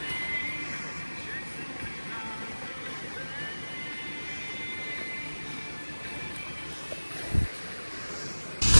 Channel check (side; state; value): both; inverted; correlation -1.00